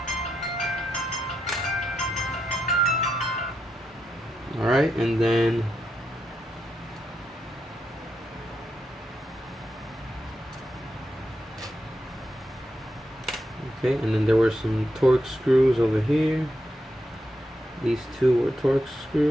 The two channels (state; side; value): normal; both; correlation 0.84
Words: Alright, and then okay, and then there were some Torx screws over here. These 2 were Torx